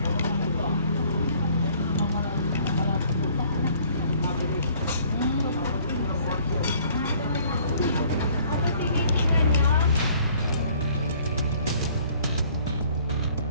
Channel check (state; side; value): inverted; both; correlation -0.58